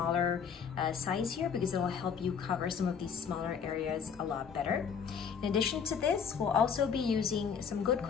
size here because it will help you cover some of these smaller areas a lot better. In addition to this, we'll also be using some good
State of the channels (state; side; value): quieter; right; 6.8 dB